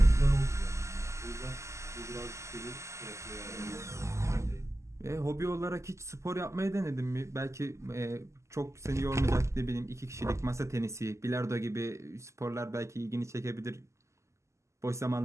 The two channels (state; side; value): late; left; 0.14 ms